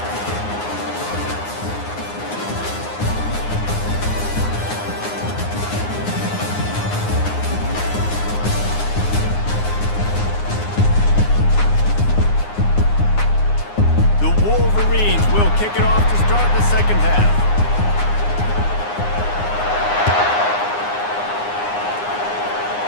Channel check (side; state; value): right; late; 9.7 ms